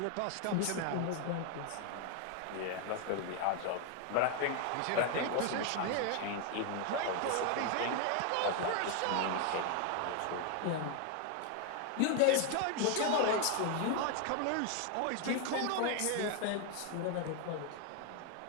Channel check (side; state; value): both; different; correlation 0.00